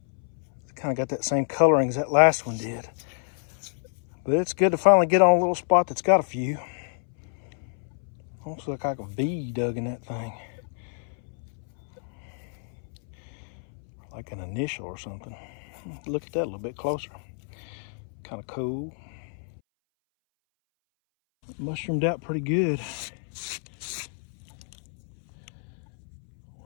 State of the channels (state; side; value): silent; right; 59 dB below the other